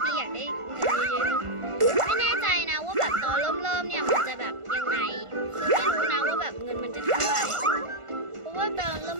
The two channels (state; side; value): late; left; 1.5 ms